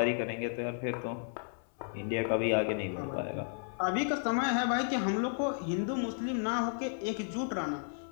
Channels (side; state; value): right; silent; 56 dB below the other